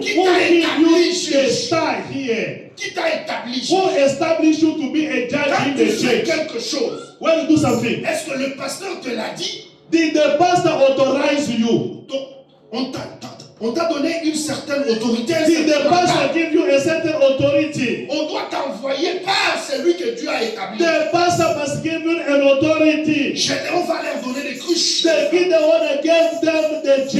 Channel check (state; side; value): identical; both; correlation 1.00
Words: who t'a gave établi you the juge? star here? Qui t'a établi? Who established you to be a judge Quand in tu the fais church? quelque chose, when you do something, est-ce que le pasteur te l'a dit? did the pastor authorize you? Donc, on t'a donné une certaine autorité. Did the pastor give you a certain authority? On doit t'envoyer par celui que Dieu a établi. The pastor must give you an authority. Gédéon va leur donner des cruches. The one gave them the